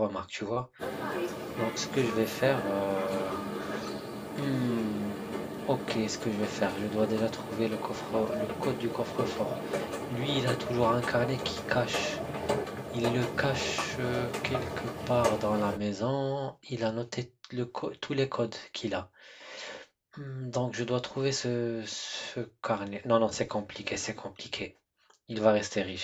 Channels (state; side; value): identical; both; correlation 1.00